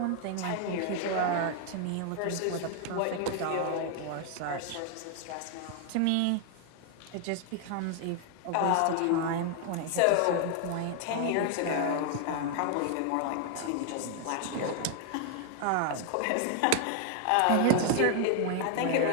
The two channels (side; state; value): both; different; correlation 0.00